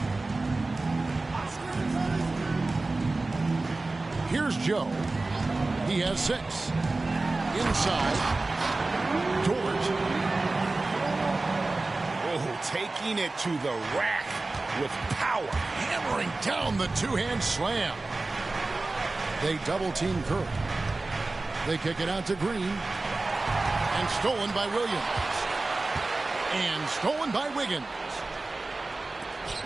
Here's Joe. He has 6. Inside. George. Oh, taking it to the rack with power. Hammering down the two-hand slam. They double-team Curry. They kick it out to Green. And stolen by Williams. And stolen by Wiggins.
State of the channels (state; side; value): quieter; left; 3.3 dB